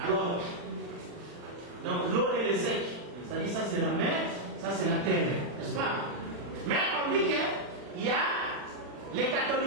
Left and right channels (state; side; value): late; left; 40 ms